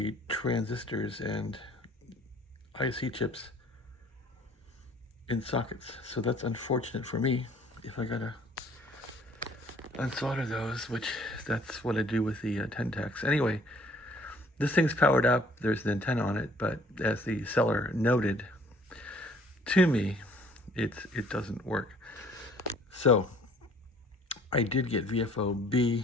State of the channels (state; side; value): normal; both; correlation 0.57